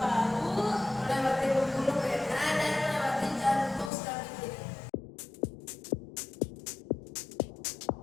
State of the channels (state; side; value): drops out; right; at 3.9 s